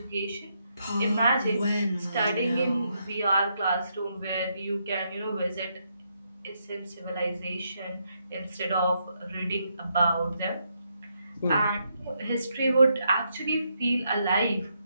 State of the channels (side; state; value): both; inverted; correlation -0.78